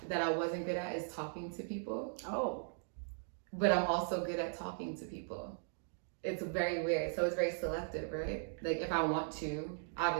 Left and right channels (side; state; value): left; silent; digital silence